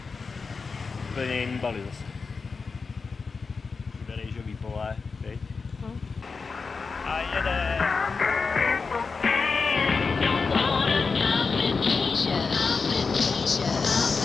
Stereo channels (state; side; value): quieter; right; 4.7 dB